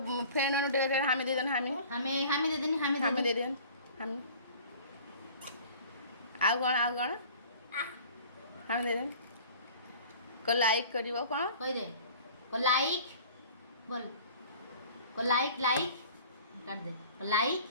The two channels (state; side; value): inverted; both; correlation -0.46